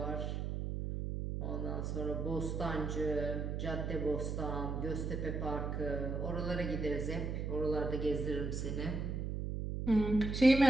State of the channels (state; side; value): noise; right; hum, 2 dB below the sound